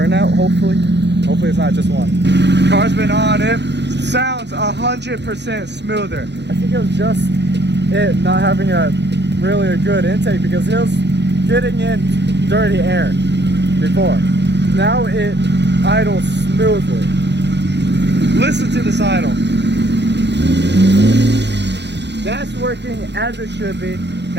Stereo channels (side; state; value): left; late; 0.50 ms